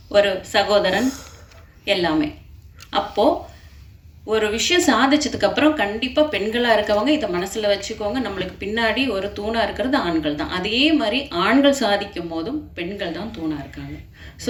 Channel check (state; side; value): identical; both; correlation 1.00